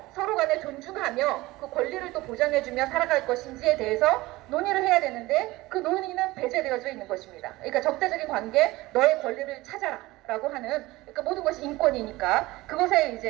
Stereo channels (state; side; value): quieter; left; 19.6 dB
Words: 서로 간에 존중하며 그 권리를 또 보장해주며 살아갈 것인지에 대해서 논의를 해야 되는데 그 논의는 배제되어져 있는 것입니다. 그러니까 적대적인 관계, 너의 권리를 찾아라 라고 하는 그러니까 모든 것이 인권이니까 그것에